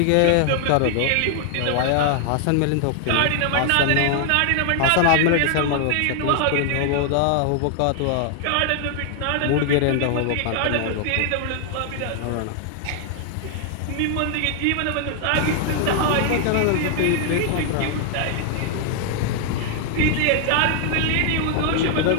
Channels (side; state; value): both; different; correlation 0.00